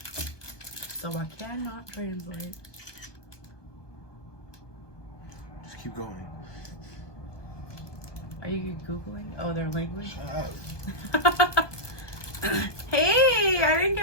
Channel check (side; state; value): right; late; 1.2 ms